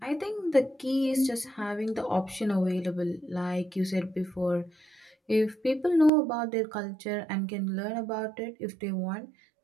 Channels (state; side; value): drops out; left; at 6.1 s